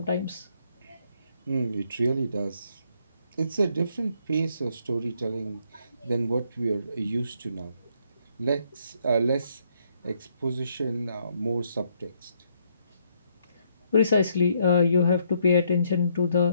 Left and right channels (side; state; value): both; inverted; correlation -0.72